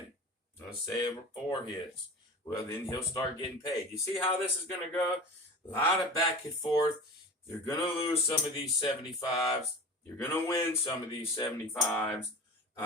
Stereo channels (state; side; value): normal; both; correlation 0.34